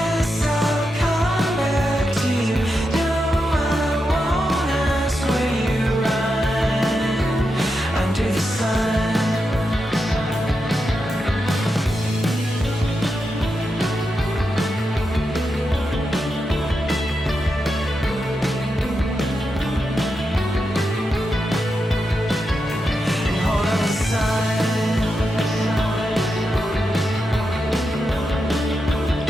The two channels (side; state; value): both; normal; correlation 0.87